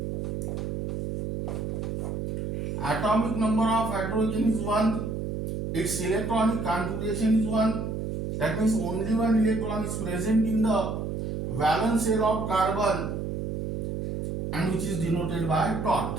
atomic number of hydrogen is 1, its electronic configuration is 1, That means only one electron is present in the valence shell of carbon, and which is denoted by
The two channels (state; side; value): noise; right; hum, 3 dB below the sound